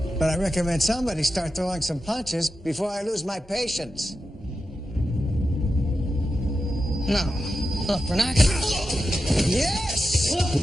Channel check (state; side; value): normal; both; correlation 0.90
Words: But I recommend somebody start throwing some punches before I lose my patience. No. Look, we're not gonna... Yes!